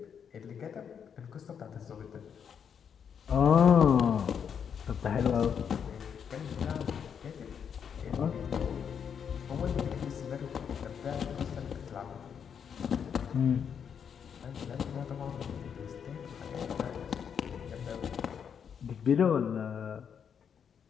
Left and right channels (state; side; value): quieter; right; 7.5 dB